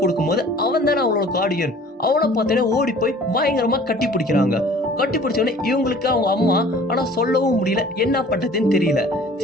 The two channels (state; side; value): normal; both; correlation 0.49